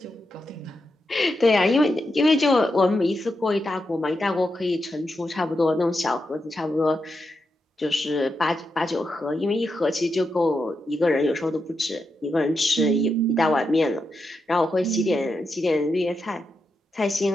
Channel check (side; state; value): both; normal; correlation 0.86